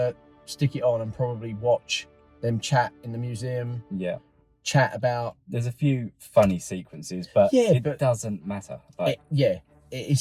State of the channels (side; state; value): both; identical; correlation 1.00